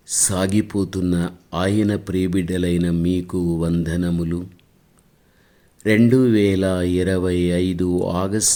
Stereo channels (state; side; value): identical; both; correlation 1.00